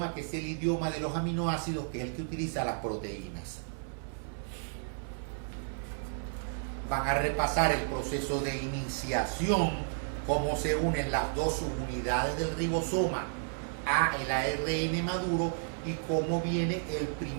que es el idioma de los aminoácidos, que es el que utiliza las proteínas. Van a repasar el proceso de iniciación, cómo se unen las dos subunidades del ribosoma a el ARN maduro y cómo viene el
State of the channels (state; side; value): silent; left; 56 dB below the other